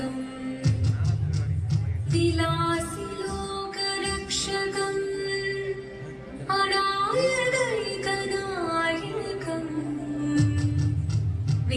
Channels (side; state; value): both; identical; correlation 1.00